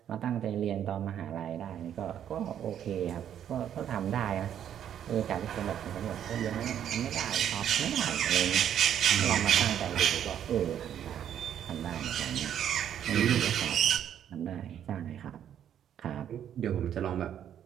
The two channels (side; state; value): left; quieter; 9.8 dB